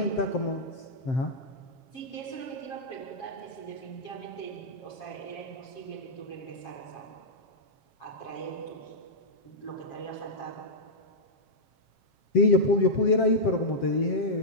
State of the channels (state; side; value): late; right; 7.4 ms